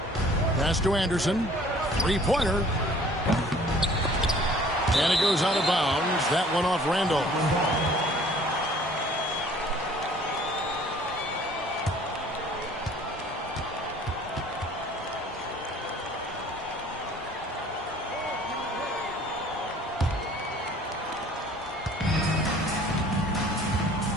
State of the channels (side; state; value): both; normal; correlation 0.53